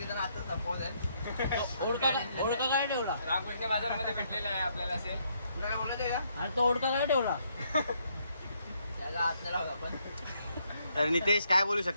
आता संपवत आहे. ओळखा काय ठेवला? रामकृष्ण बाजारमध्ये भेटलेला आहे आपल्याला. असेल काय बोलत आहे का? अरे तो ओळखा काय ठेवला? त्याला हात नाही लावला आपण. तर नितेश काय बोलू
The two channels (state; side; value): inverted; both; correlation -0.72